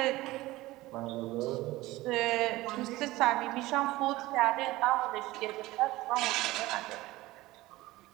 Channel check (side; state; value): left; quieter; 18.5 dB